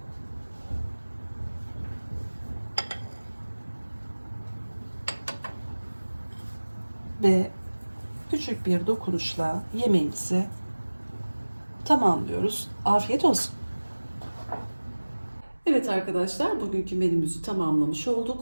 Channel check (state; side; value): inverted; both; correlation -1.00